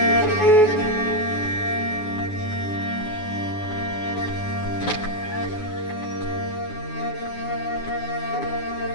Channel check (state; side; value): late; right; 10 ms